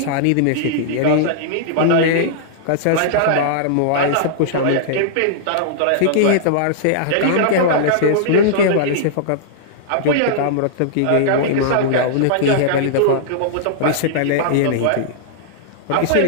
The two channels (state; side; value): different; both; correlation -0.02